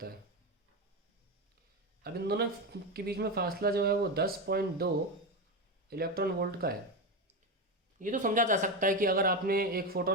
है, अब इन दोनों के बीच में फासला जो है वो 10.2 इलेक्ट्रॉन वोल्ट का है। ये तो समझा जा सकता है कि अगर आपने एक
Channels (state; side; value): normal; both; correlation 0.14